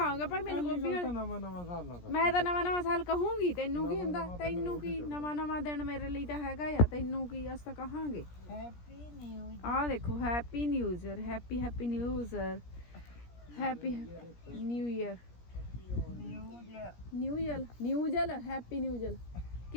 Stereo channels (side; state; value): right; late; 17 ms